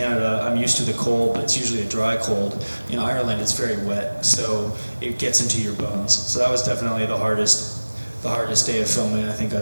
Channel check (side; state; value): both; inverted; correlation -1.00